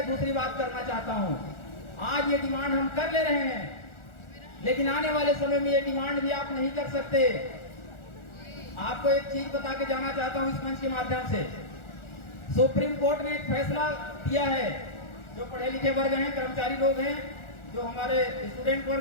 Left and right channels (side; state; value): right; late; 1.4 ms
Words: दूसरी बात करना चाहता हूं, आज ये डिमांड हम कर ले रहे हैं, लेकिन आने वाले समय में ये डिमांड भी आप नहीं कर सकते। आपको एक चीज बता के जाना चाहता हूं इस मंच के माध्यम से, सुप्रीम कोर्ट ने एक फैसला दिया है, जो पढ़े लिखे वर्ग हैं, कर्मचारी लोग हैं, जो हमारे स्टूडेंट